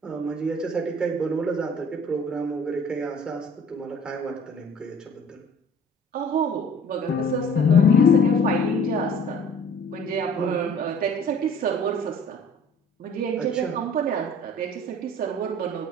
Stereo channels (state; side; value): normal; both; correlation 0.50